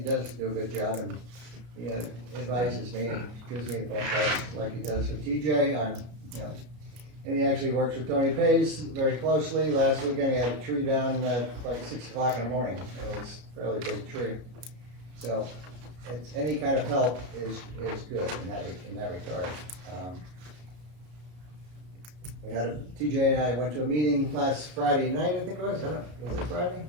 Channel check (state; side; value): late; left; 33 ms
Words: does do a good job, and he advises me and gives me the phone calls like he does with TJ. And he actually works with Tony Pays very closely. Last weekend he had a tree down at like 6 o'clock in the morning. It was a fairly big tree. So it's any kind of help is good in that regard. We had TJ and I went to a meeting last Friday night, I think it was. Was it Friday?